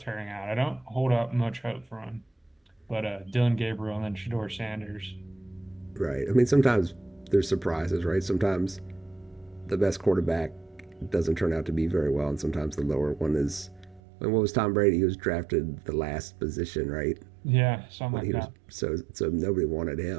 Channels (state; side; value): drops out; left; at 14.0 s